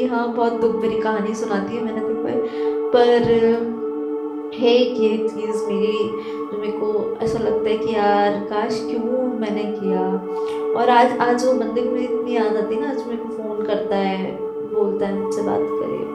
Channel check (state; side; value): identical; both; correlation 1.00